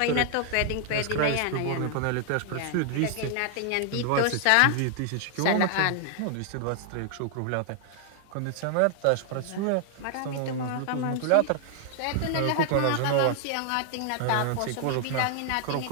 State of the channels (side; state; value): both; different; correlation 0.00